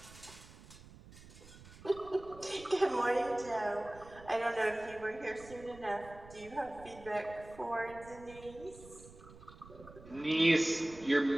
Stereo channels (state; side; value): noise; right; rumble, 19 dB below the sound